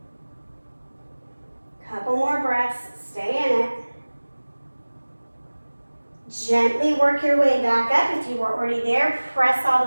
Couple more breaths. Stay in it. Gently work your way back up. If you were already there, press all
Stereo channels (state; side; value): inverted; both; correlation -1.00